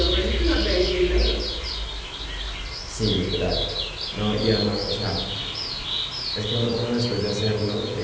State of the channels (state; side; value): identical; both; correlation 1.00